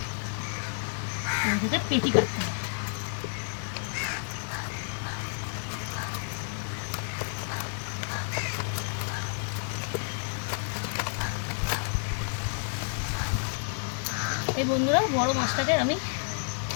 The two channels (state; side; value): silent; right; digital silence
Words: পেটি কাটতে হবে। এই বন্ধুরা, বড় মাছটাকে আমি